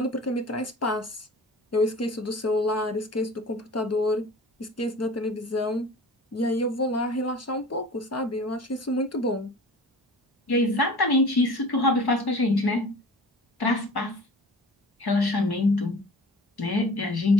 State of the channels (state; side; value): normal; both; correlation 0.41